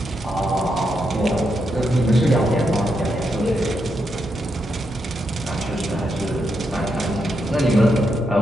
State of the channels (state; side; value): normal; both; correlation 0.82